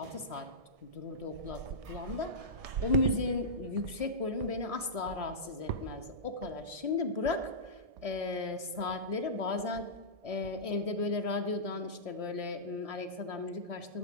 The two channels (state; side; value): late; left; 1.6 ms